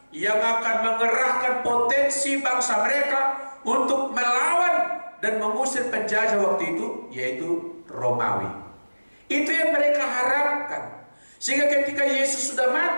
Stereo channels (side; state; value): both; inverted; correlation -1.00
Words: yang akan mengerahkan potensi bangsa mereka untuk melawan dan mengusir penjajah waktu itu, yaitu Romawi. Itu yang mereka harapkan. Sehingga ketika Yesus sudah